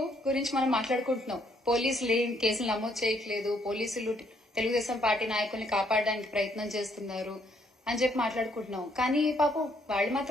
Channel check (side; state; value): both; normal; correlation 0.70